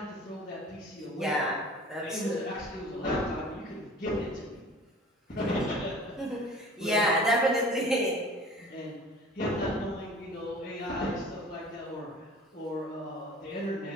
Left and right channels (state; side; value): normal; both; correlation 0.45